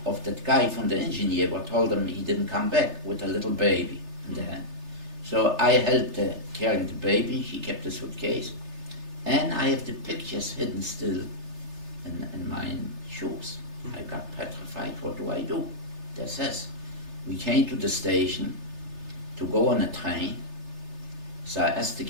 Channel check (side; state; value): left; late; 3.3 ms